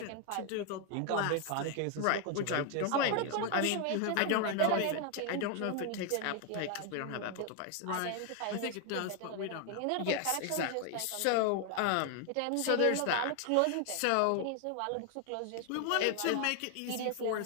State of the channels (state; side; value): different; both; correlation 0.00